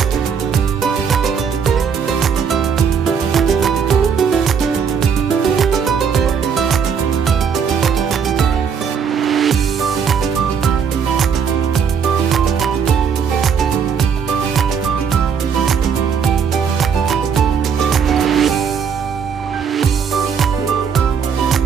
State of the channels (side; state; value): left; quieter; 6.8 dB